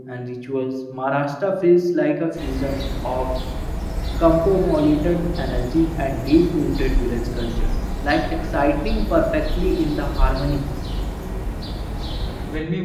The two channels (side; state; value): both; identical; correlation 1.00